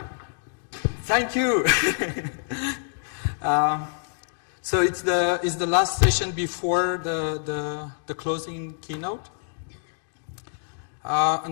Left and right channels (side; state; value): right; silent; digital silence